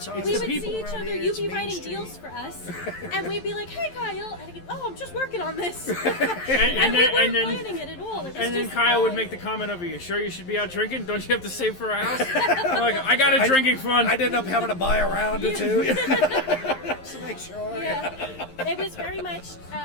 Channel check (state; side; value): late; right; 11 ms